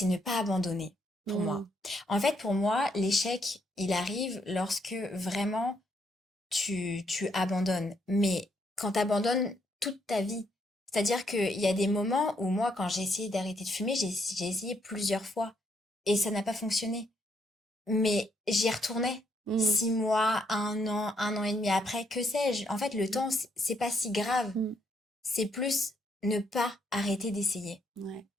ne pas abandonner pour moi. mm, En fait, pour moi, l'échec, il arrive lorsque vraiment tu abandonnes. Mais quand tu abandonnes toute ta vie, c'est-à-dire qu'il y a des moments où moi, quand j'ai essayé d'arrêter de fumer, j'ai essayé plusieurs fois et ça n'a pas fonctionné. Mais j'y retournais. mm, 6 mois, 1 an et demi après, que sais-je? En fait, le temps, c'est pas si grave. mm. C'est plus ne pas arrêter d'essayer. Ouais,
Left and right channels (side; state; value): both; normal; correlation 0.74